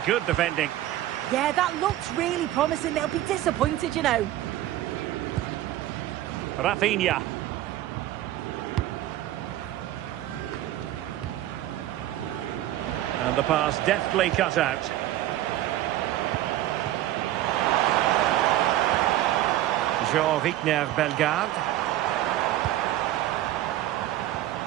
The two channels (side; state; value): left; quieter; 14.1 dB